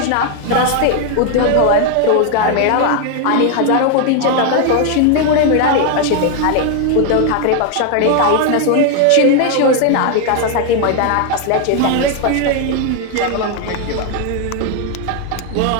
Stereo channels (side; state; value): both; different; correlation 0.01